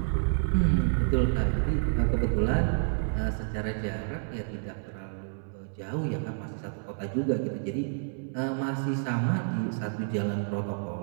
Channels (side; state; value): left; silent; 58 dB below the other